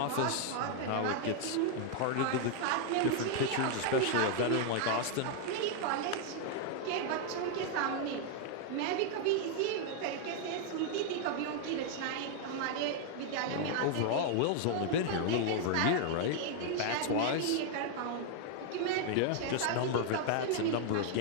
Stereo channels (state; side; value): different; both; correlation 0.00